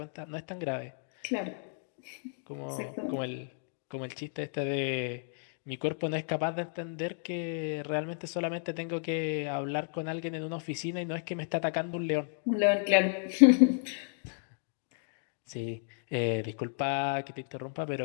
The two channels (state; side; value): silent; right; digital silence